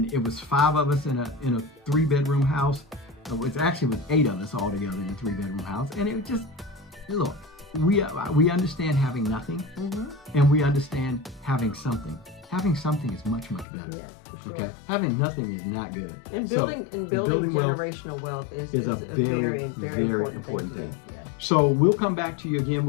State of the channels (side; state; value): right; drops out; at 13.7 s